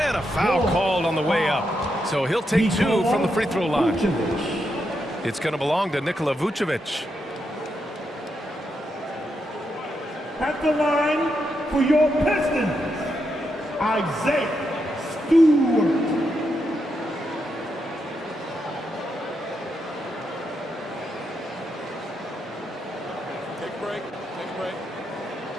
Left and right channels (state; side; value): normal; both; correlation 0.83